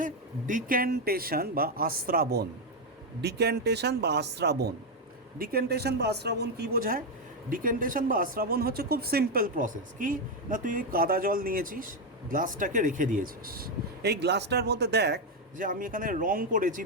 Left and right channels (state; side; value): normal; both; correlation 0.05